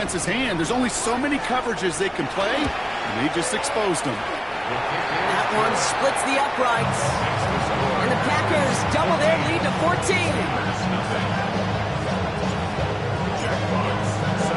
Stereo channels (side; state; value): both; identical; correlation 1.00